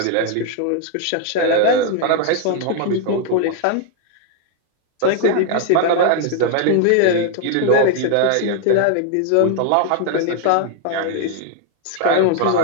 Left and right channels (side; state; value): both; different; correlation 0.00